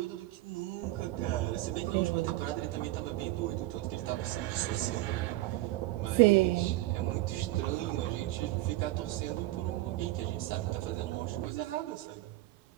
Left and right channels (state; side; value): quieter; left; 17.2 dB